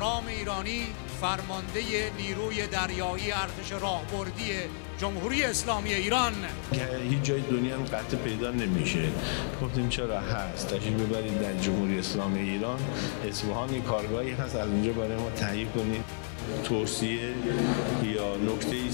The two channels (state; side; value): silent; right; digital silence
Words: ایرانی، فرمانده نیروی دریایی ارتش راهبردی جمهوری اسلامی ایران. که هیچ جای دنیا هم قطع پیدا نمیشه. گفتیم چرا هست، تشریف ببرید در جمهوری اسلامی ایران، اصفهان کارگاهی هست، از اونجا برای ما تهیه کنید. توصیه یا نکته